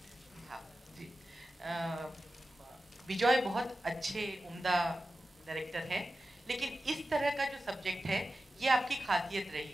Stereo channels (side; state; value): both; normal; correlation 0.93